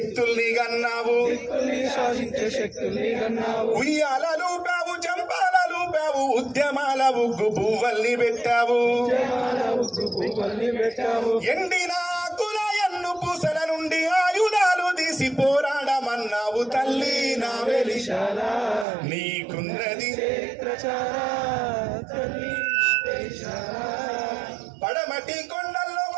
గన్నావు, ఉయ్యాలలు పావు చంపాలలు పావు ఉద్యమాల ఉగ్గు పువ్వల్ని పెట్టావు, ఎండిన ఆకుల ఎన్ను పూసల నుండి ఆయుధాలు తీసి పోరాడమన్నావు, తల్లి నా వెలిశాల నీకున్నది పడమటి కొండల్లో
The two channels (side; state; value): left; drops out; at 18.9 s